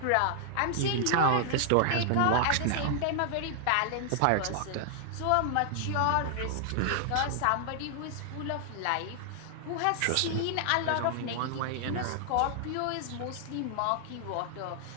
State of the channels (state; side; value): different; both; correlation 0.00